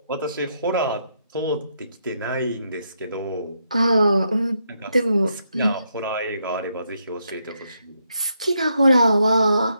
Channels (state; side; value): inverted; both; correlation -0.79